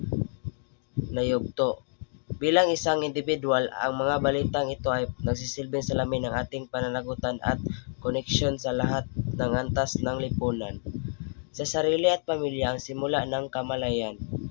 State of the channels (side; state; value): right; silent; digital silence